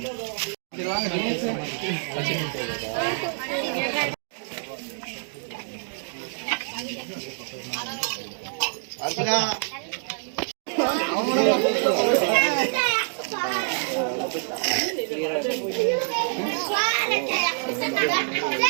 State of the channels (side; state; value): left; silent; digital silence